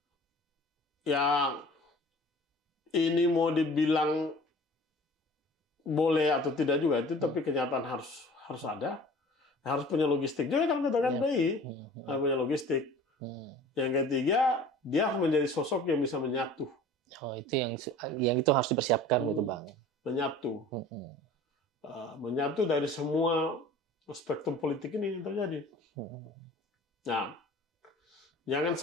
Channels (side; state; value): both; normal; correlation 0.45